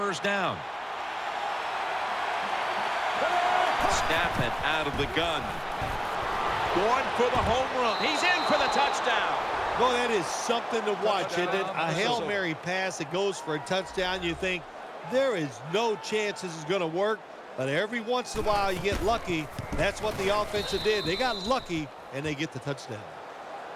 down. Snap it out of the gun. Going for the home run. He's in for the touchdown. Well, that is something to watch, isn't it? A Hail Mary pass that goes for a touchdown. You think there is no chance this is going to work, but every once in a while you get lucky. That's what the offense did. They got lucky, and they get the touchdown.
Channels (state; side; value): identical; both; correlation 1.00